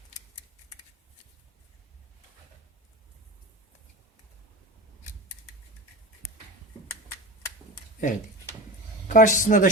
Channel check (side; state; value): both; normal; correlation 0.29